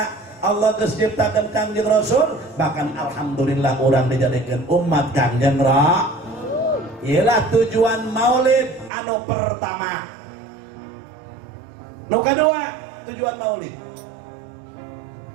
Allah geus ciptakeun Kangjeng Rasul bahkan alhamdulillah urang dijadikeun umat Kangjeng Rasul. Ialah tujuan maulid anu pertama. Nu kedua tujuan maulid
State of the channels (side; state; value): left; drops out; at 8.9 s